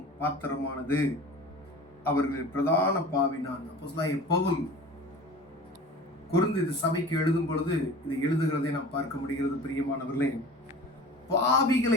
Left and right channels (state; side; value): normal; both; correlation 0.39